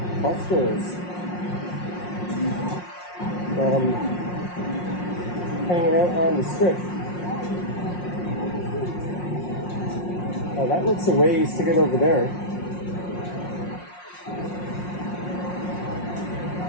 busters from hanging out on the strip. Oh, that looks a ways to get over there.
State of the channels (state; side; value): late; right; 5.6 ms